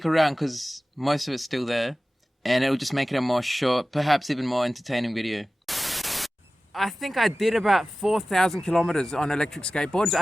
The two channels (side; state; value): both; normal; correlation 0.96